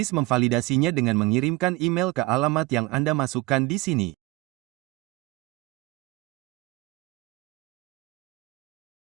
memvalidasinya dengan mengirimkan email ke alamat yang Anda masukkan di sini.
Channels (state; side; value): quieter; left; 19.8 dB